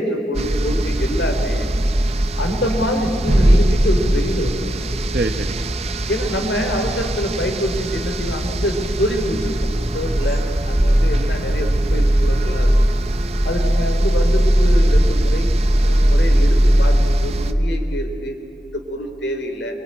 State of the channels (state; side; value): normal; both; correlation 0.87